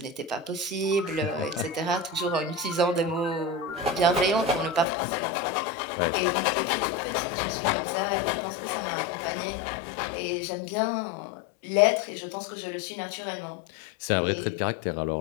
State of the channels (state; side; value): drops out; right; at 4.9 s